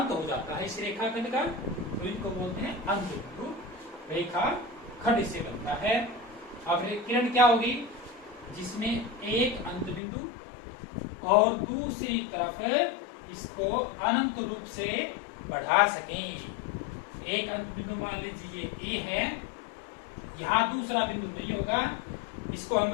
हो जाता है इस रेखाखंड का, तो इनको बोलते हैं अंत बिंदु। रेखाखंड इससे बनता है। अब किरण क्या होगी? जिसमें एक अंत बिंदु और दूसरी तरफ इसको अनंत रूप से बढ़ा सकें। एक अंत बिंदु मान लीजिए ए है, यहां दूसरा बिंदु नहीं होगा, इसको हम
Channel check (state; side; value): drops out; right; at 10.0 s